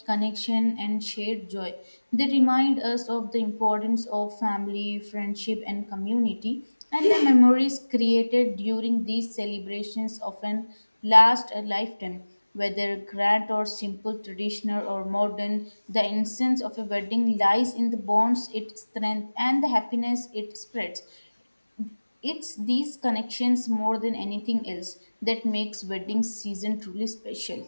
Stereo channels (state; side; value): inverted; both; correlation -1.00